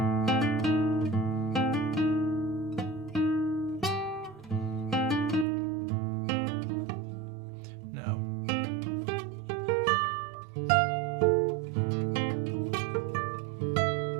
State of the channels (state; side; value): drops out; left; at 5.5 s